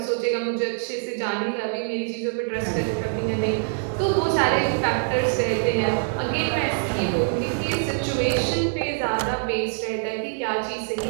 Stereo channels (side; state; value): left; silent; digital silence